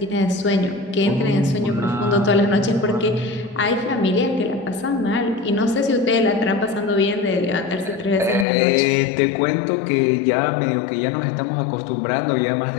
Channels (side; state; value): right; drops out; at 8.5 s